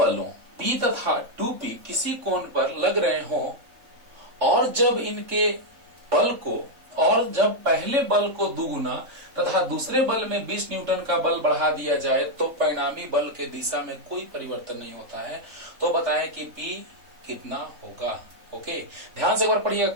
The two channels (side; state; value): left; late; 3.7 ms